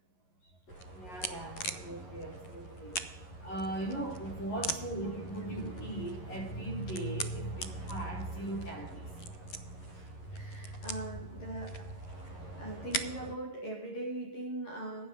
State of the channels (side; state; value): right; late; 11 ms